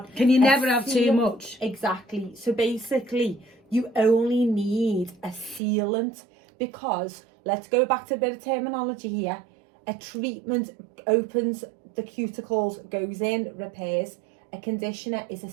Can you a never have too seal- much? Exactly. So basically, you only need a sealant because, let's go back to a bit of terminology here. A treatment opens the cuticles, goes in, repairs. A conditioner is a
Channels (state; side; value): drops out; left; at 5.6 s